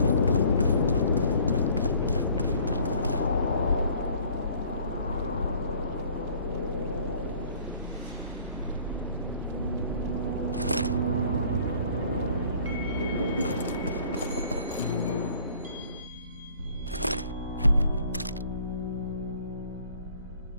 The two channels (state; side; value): inverted; both; correlation -0.55